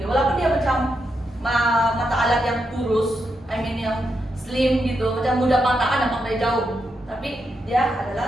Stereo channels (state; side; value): normal; both; correlation 0.83